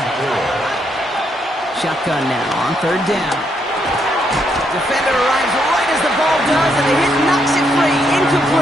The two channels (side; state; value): both; normal; correlation 0.76